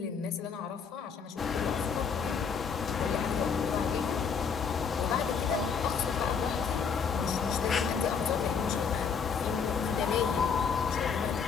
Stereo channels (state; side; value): quieter; right; 6.1 dB